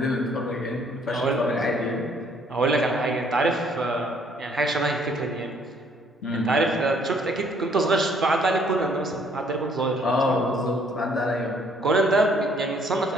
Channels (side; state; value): both; normal; correlation 0.63